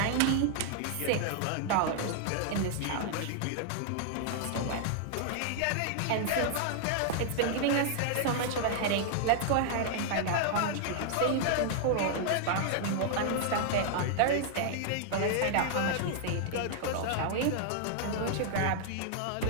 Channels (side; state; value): both; different; correlation -0.01